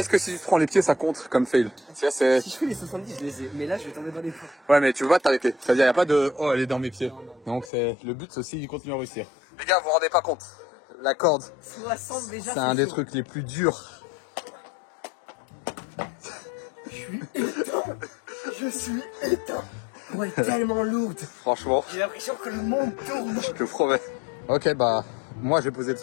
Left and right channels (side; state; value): right; drops out; at 7.7 s